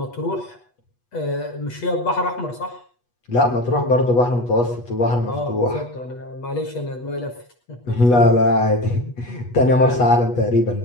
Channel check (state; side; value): late; right; 8.2 ms